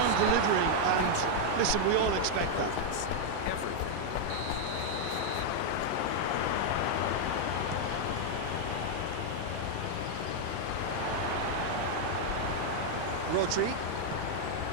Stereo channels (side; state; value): both; different; correlation 0.00